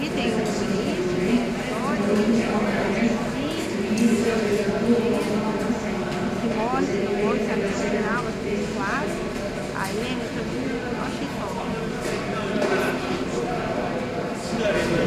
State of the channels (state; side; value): identical; both; correlation 1.00